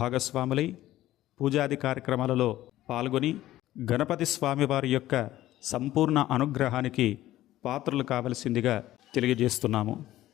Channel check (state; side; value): quieter; right; 14.7 dB